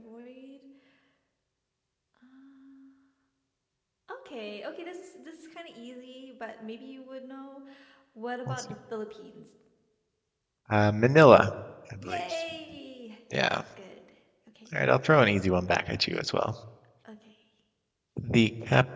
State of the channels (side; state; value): both; identical; correlation 1.00